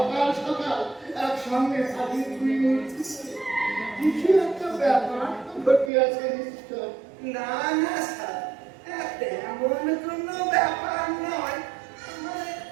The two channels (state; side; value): drops out; left; at 5.9 s